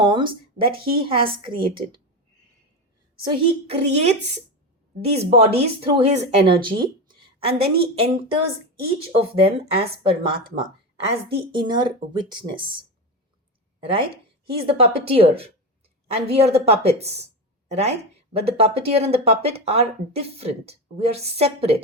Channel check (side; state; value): both; normal; correlation 0.18